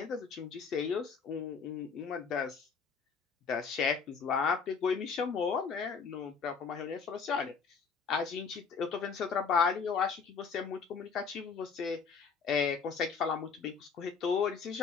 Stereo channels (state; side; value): quieter; right; 5.6 dB